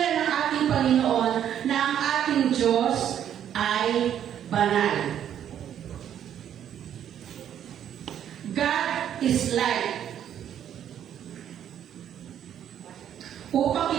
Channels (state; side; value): quieter; left; 9.9 dB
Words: ng ating Panginoon na ang ating Diyos ay banal. God is light. Upang